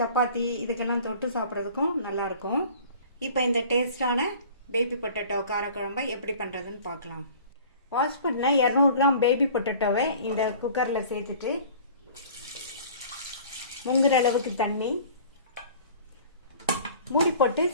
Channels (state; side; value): inverted; both; correlation -0.46